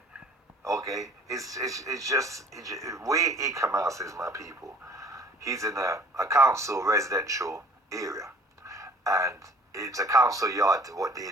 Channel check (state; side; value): normal; both; correlation 0.52